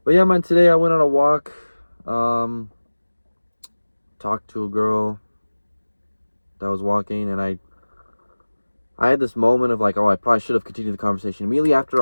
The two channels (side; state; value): both; inverted; correlation -1.00